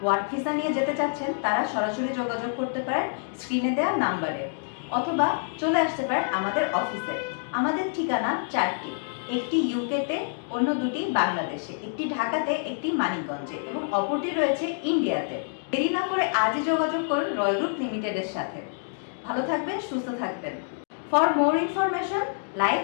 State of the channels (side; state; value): right; silent; digital silence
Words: ওয়ার্ক ভিসা নিয়ে যেতে চাচ্ছেন তারা সরাসরি যোগাযোগ করতে পারেন স্ক্রিনে দেওয়া নাম্বারে, অথবা চলে আসতে পারেন আমাদের অফিসে। আমাদের ঠিকানা 4টি, একটি ইউকেতে, অন্য দুটি বাংলাদেশে, একটি ঢাকাতে, একটি মানিকগঞ্জে এবং অপরটি রয়েছে ইন্ডিয়াতে। দেরি না করে আজই যোগাযোগ করুন রয় গ্রুপ লিমিটেডের সাথে। ভালো থাকবেন, সুস্থ থাকবেন। For more information like